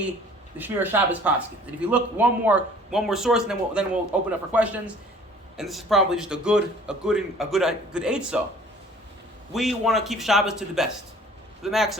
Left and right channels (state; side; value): normal; both; correlation 0.52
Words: the Shmir Shabbos paskins. And if you look one more source, and then we'll open up for questions. And this is probably just a good eitzah. We want to keep Shabbos to the best, to the